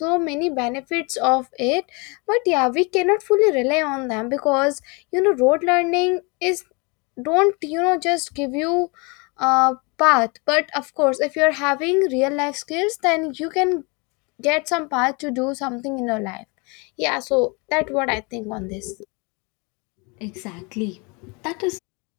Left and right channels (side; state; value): right; quieter; 30.3 dB